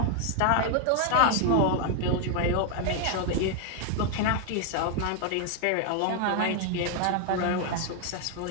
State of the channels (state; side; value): different; both; correlation 0.00